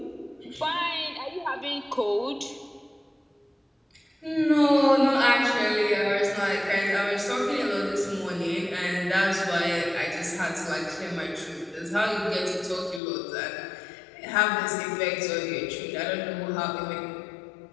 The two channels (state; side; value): drops out; right; at 13.0 s